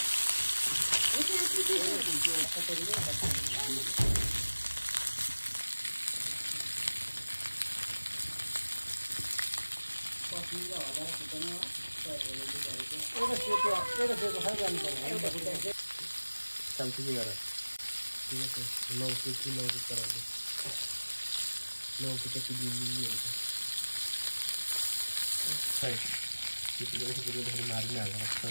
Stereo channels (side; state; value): both; inverted; correlation -1.00